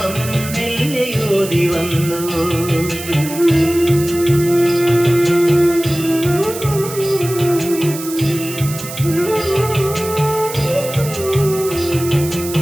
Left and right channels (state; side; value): noise; right; hiss, 11 dB below the sound